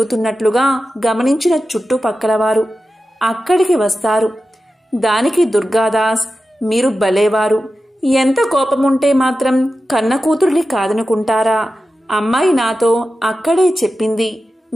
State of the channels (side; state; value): both; normal; correlation 0.92